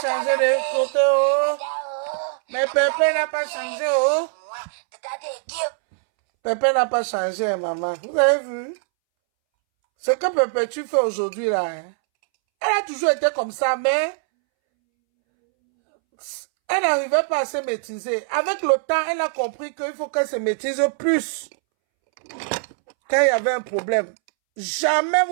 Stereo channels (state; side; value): silent; left; 64 dB below the other